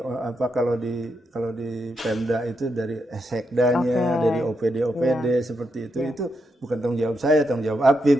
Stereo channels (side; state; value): both; normal; correlation 0.83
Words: kalau di Pemda itu dari Sekdanya, dari OPD seperti itu itu bukan tanggung jawab saya, tanggung jawab